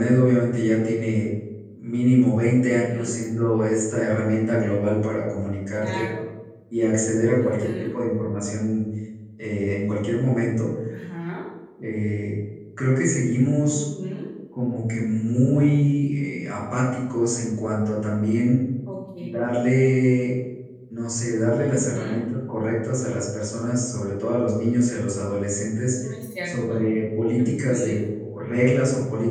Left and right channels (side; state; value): both; identical; correlation 1.00